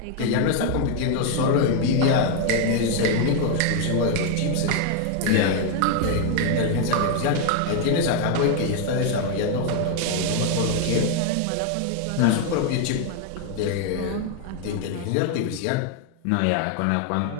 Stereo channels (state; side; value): different; both; correlation 0.00